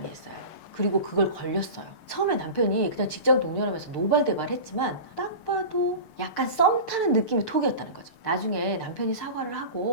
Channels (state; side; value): late; right; 6.6 ms